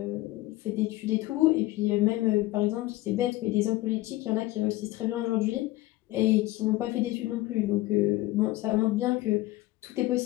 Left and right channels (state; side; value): quieter; right; 18.0 dB